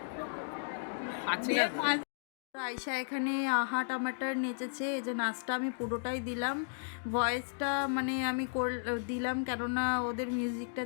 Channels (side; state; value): right; silent; digital silence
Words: আয়শা এখানে আহা টমাটার নেচেছে। এই যে নাচটা আমি পুরোটাই দিলাম, ভয়েসটা মানে আমি দিলাম, কেননা ওদের মিউজিকটা